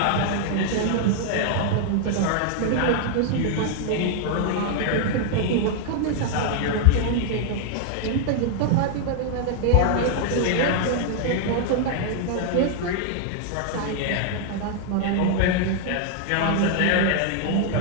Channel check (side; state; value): both; different; correlation 0.00